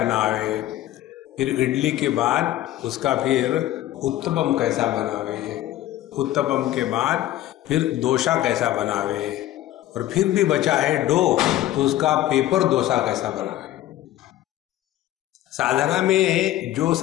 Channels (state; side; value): quieter; right; 14.1 dB